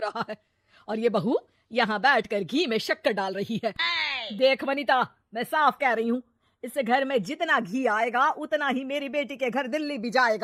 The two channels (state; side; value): identical; both; correlation 1.00